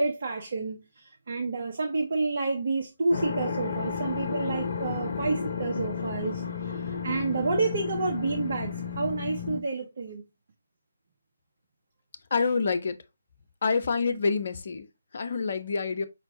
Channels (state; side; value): inverted; both; correlation -0.79